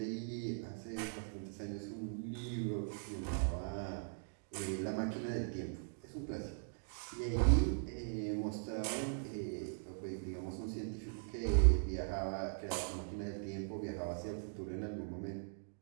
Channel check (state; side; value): silent; left; digital silence